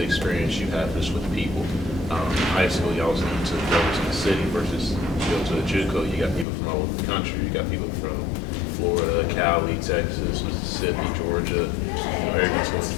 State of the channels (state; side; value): drops out; right; at 6.5 s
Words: experience you have just with people. High school, you always need to go to the city versus you go to a JUCO. You got people from all over the country. You got people from Florida, Cali, Texas, Mississippi, Georgia. Everyone's going